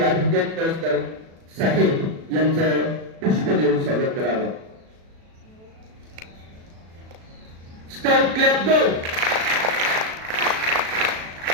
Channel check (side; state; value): left; late; 37 ms